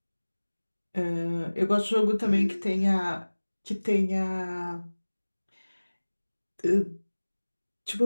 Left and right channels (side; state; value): both; inverted; correlation -1.00